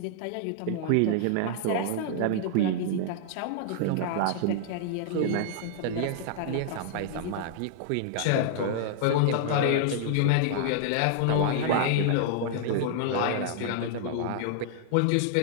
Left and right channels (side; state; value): both; different; correlation -0.01